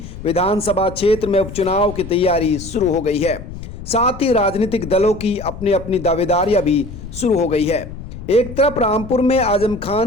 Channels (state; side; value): noise; left; rumble, 12 dB below the sound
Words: विधानसभा क्षेत्र में उपचुनाव की तैयारी शुरू हो गई है। साथ ही राजनीतिक दलों की अपनी अपनी दावेदारियां भी शुरू हो गई है। एक तरफ रामपुर में आजम